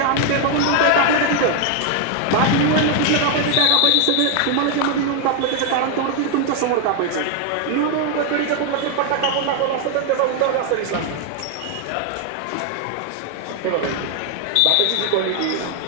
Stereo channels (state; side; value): different; both; correlation 0.01